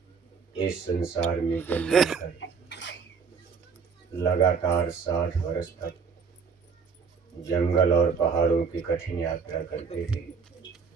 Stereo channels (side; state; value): left; quieter; 5.7 dB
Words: इस संसार में जन्म लेकर लगातार 60 वर्ष तक जंगल और पहाड़ों की कठिन यात्रा करते थे,